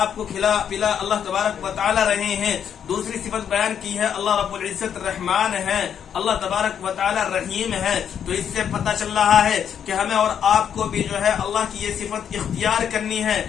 کو کھلا پلا اللہ تبارک و تعالی رہے ہیں. دوسری صفت بیان کی ہے اللہ رب العزت رحمان ہے, اللہ تبارک و تعالی رحیم ہے. تو اس سے پتہ چل رہا ہے کہ ہمیں اور آپ کو بھی جو ہے اللہ کی یہ صفت اختیار کرنی ہے,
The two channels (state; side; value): quieter; right; 8.5 dB